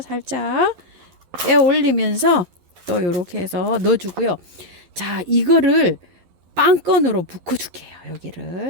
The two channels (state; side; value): late; left; 11 ms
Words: 살짝 빼 올리면서 또 요렇게 해서 넣어주고요. 자, 이거를 빵건으로 묶어 줄게요.